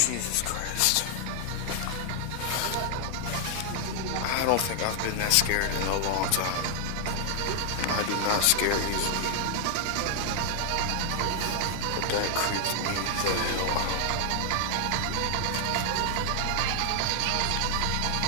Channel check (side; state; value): both; different; correlation 0.00